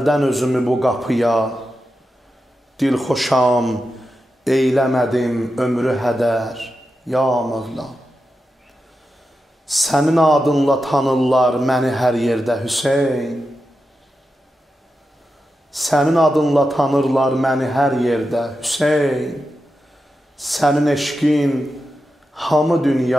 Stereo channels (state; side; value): normal; both; correlation 0.89